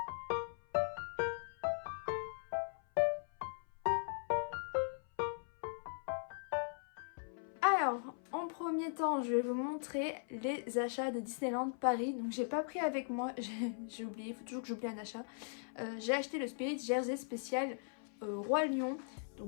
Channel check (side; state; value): right; silent; 52 dB below the other